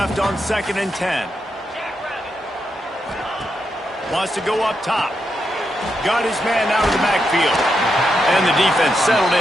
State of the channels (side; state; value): both; normal; correlation 0.83